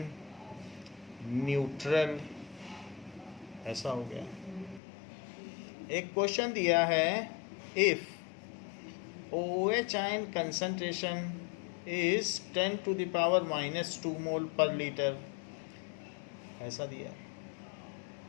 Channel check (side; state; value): right; drops out; at 4.8 s